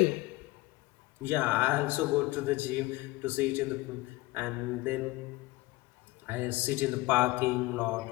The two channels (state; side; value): quieter; right; 20.0 dB